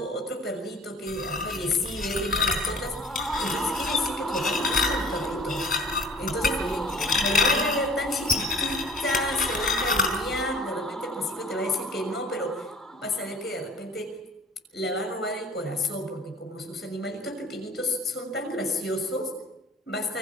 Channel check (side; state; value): both; normal; correlation 0.47